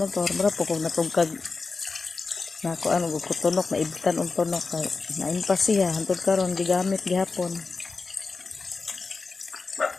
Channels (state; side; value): quieter; right; 4.3 dB